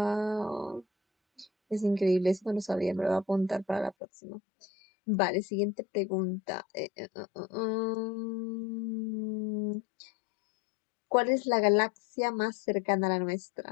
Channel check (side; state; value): right; drops out; at 4.0 s